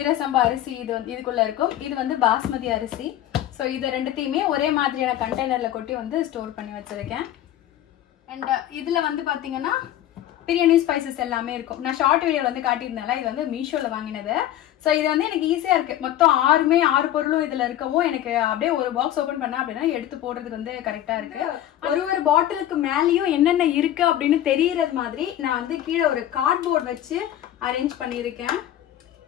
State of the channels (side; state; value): right; quieter; 12.4 dB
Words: அரிசி இது வந்து இதுக்குள்ள இருக்கும். இது வந்து பாஸ்மதி அரிசி. ஸோ இது ரெண்டுத்தையுமே ஒரே மாதிரியான கண்டெய்னர்ல கொட்டி வந்து ஸ்டோர் பண்ணி வச்சிருக்கேன். அண்ட் இதுல வந்து பாத்தீங்கன்னா பிரியாணி ஸ்பைசஸ் எல்லாமே இருக்கும். நான் ஷார்ட் வீடியோல வந்து காட்டியிருந்தேன்ல, இது வந்து மீஷோல வாங்கினது. சோ இது வந்து எனக்கு ஈஸியா இருக்கு. மொத்தம் 6 பொருளும் இதுல இருக்கவும் எனக்கு அப்படியே ஒரு பாக்ஸ் ஓபன் பண்ணா அப்படின்னா எடுத்து போடுறதுக்கு வந்து கரெக்டா இருக்கு. ஒரு பாட்டிலுக்கு மேலயும் என்னென்ன இருக்கு அப்படின்னு தெரியறது மாதிரி நான் வந்து கீழே ஒரு கார்ட்போர்ட் வச்சு அரேஞ்ச் பண்ணிருக்கேன்.